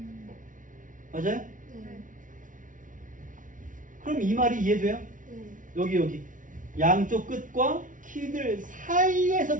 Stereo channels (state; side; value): late; left; 0.38 ms